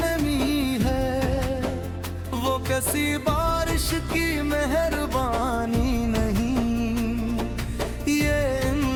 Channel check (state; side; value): identical; both; correlation 1.00